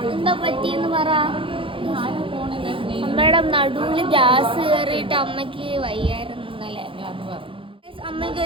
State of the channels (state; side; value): late; left; 0.25 ms